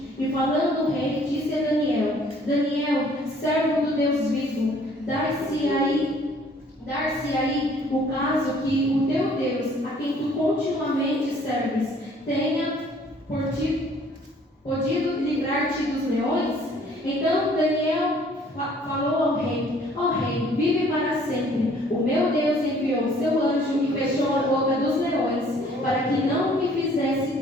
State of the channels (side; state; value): both; normal; correlation 0.58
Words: E falando o rei, disse a Daniel: Daniel, servo do Deus vivo, dar-se aí o caso que o teu Deus, a quem tu continuamente serves, tenha podido livrar-te dos leões? Então Daniel falou ao rei: Ó rei, vive para sempre. O meu Deus enviou o seu anjo e fechou a boca dos leões, para que não me fizesse